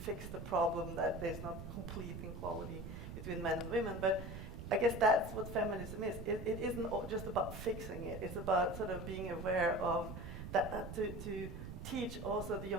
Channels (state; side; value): noise; right; rumble, 8 dB below the sound